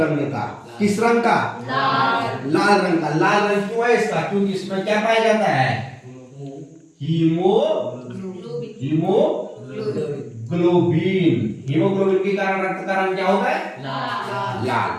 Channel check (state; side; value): identical; both; correlation 1.00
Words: का। किस रंग का? लाल रंग का। लाल रंग क्यों है इसका? क्योंकि इसमें क्या पाया जाता है? हीमोग्लोबिन। हीमोग्लोबिन के कारण रक्त का रंग क्या होता है? लाल।